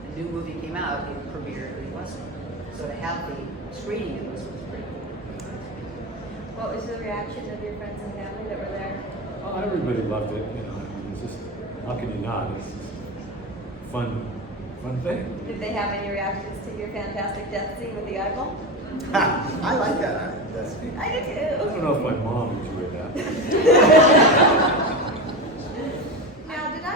a new movie came out, it premiered in Westwood. So to have the screening in Westwood was pretty cool. what was the reaction of your friends and family that were there? Oh, everybody loved it. I mean, it's just, how can you not? It's just a fun thing. Did they have any reactions to your fantastic death scene with the eyeball? I like that. That's I do I too. don't know if my mom enjoyed that. Now, did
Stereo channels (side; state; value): both; normal; correlation 0.21